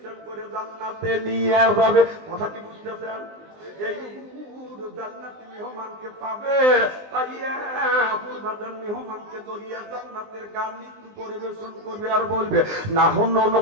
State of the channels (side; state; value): left; late; 19 ms